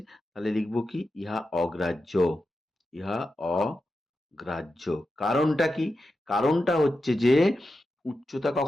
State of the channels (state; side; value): normal; both; correlation 0.90